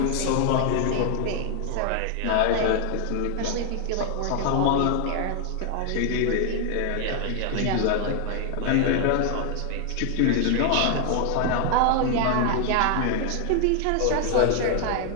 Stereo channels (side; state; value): both; different; correlation 0.00